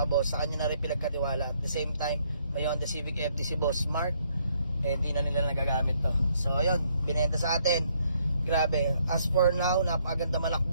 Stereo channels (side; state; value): both; inverted; correlation -0.69